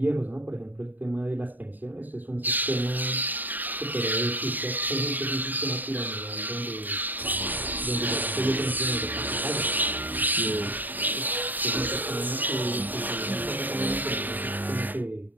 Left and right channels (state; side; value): late; left; 0.087 ms